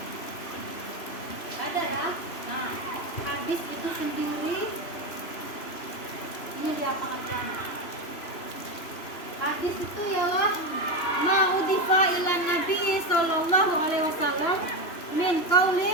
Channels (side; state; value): right; late; 3.0 ms